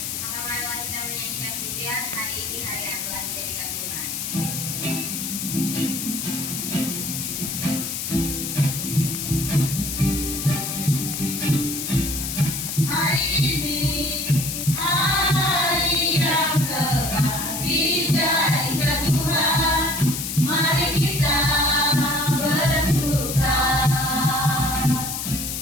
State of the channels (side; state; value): left; noise; hiss, 4 dB below the sound